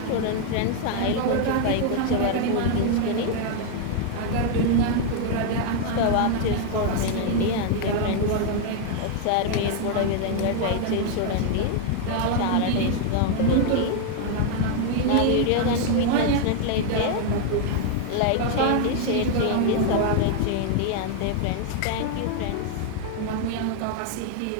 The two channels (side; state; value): both; different; correlation 0.00